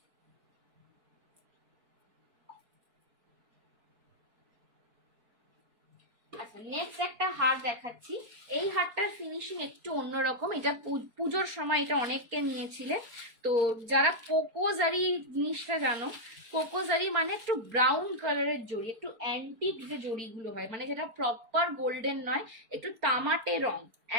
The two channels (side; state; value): left; late; 4.3 ms